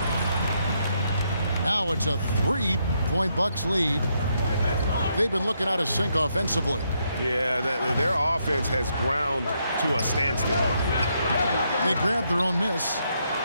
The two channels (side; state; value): both; inverted; correlation -0.77